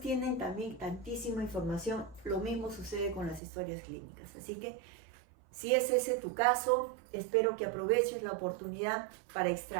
también tantísima información, lo mismo sucede con las historias clínicas. Así que si es ese tu caso, espero que aproveches la oportunidad para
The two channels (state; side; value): drops out; left; at 3.4 s